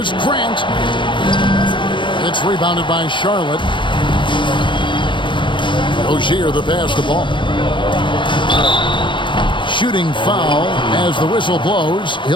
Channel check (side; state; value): right; late; 0.23 ms